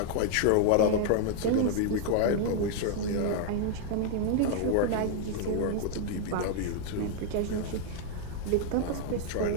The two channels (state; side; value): different; both; correlation 0.00